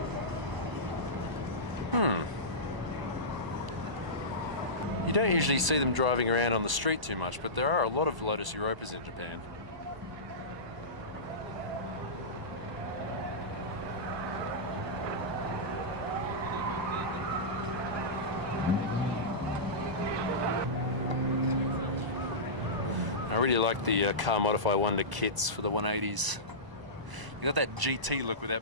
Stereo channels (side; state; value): left; late; 1.0 ms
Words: You don't usually see them driving around on the street too much, but there are a lot of Lotus Europas in Japan. I really like the Car Modify Wonder kits for the 180s. You got that GT look